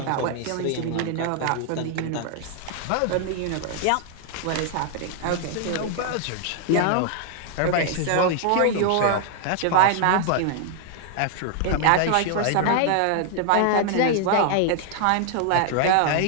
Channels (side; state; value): both; different; correlation 0.00